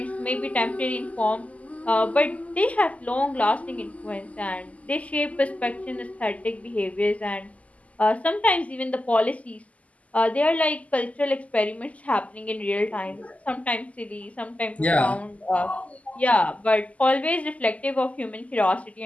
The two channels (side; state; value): right; late; 0.071 ms